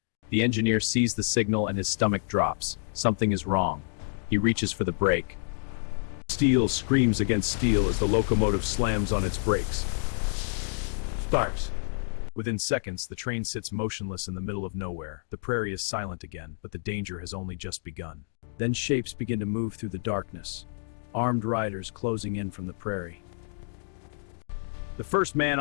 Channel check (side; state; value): right; silent; digital silence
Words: The engineer sees the signal and his stomach drops. Something is wrong. He reaches for the brake. Steel screams against steel as the locomotive slams on its brakes. Starts. Within seconds, the train sits motionless in the middle of nowhere. The prairie is silent again, but the danger has only just begun. Then shapes begin to move through the darkness. Armed riders closing in from the prairie. The first man